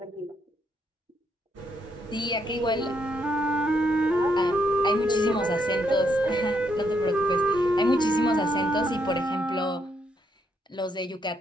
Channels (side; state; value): both; normal; correlation 0.75